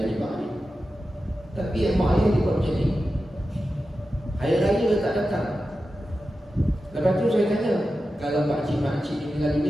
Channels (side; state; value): both; normal; correlation 0.92